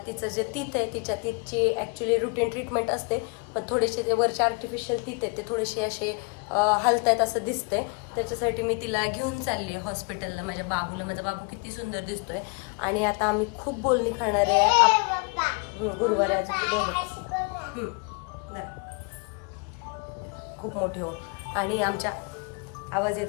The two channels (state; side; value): quieter; right; 34.0 dB